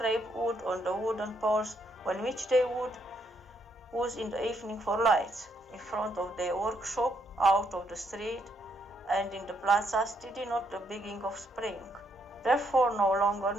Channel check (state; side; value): normal; both; correlation 0.74